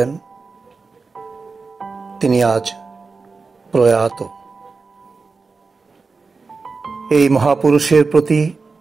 তিনি আজ প্রয়াত। এই মহাপুরুষের প্রতি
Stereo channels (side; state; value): left; quieter; 4.4 dB